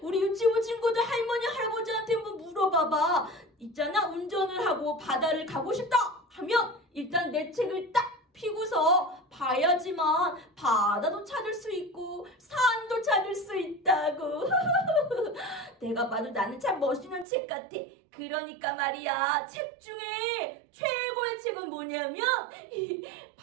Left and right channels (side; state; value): left; drops out; at 17.2 s